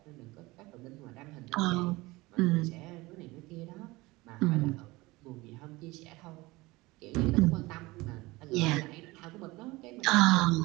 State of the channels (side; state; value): left; quieter; 21.3 dB